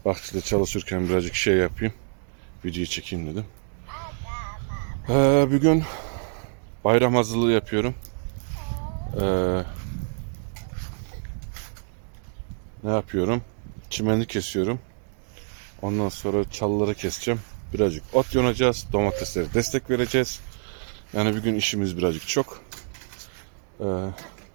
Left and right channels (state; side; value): silent; left; digital silence